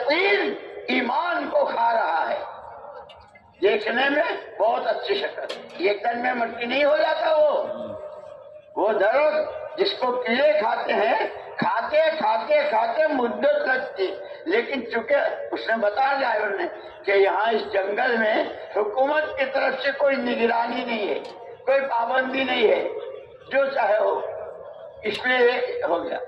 ایمان کو کھا رہا ہے. دیکھنے میں بہت اچھی شکل، ایک دن میں مٹی نہیں ہو جاتا. وہ درخت جس کو کیڑے کھاتے ہیں، کھاتے کھاتے کھاتے مدت لگتی. لیکن چونکہ اس نے بتایا ڈرائیور نے کہ یہاں اس جنگل میں حکومت کی طرف سے کوئی نگرانی نہیں ہے، کوئی پابندی نہیں ہے، جو چاہے ہو. اس لیے ہو گیا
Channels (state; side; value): identical; both; correlation 1.00